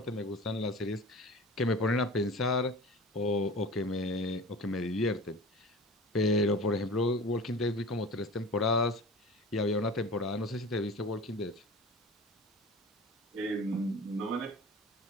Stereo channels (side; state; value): both; normal; correlation 0.37